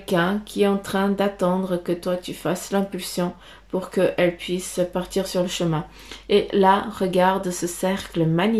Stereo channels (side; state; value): both; identical; correlation 1.00